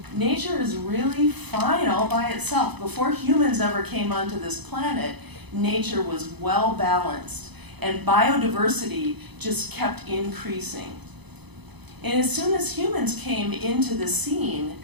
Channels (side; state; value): left; late; 0.99 ms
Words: Nature is really fine all by itself. Before humans ever came onto this planet, nature was well balanced, and biodiversity just kept increasing. And as soon as humans came into the scene,